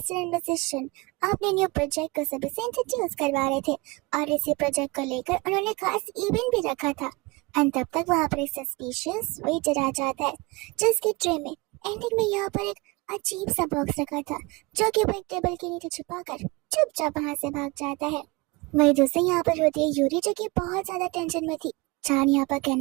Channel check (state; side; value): quieter; left; 24.6 dB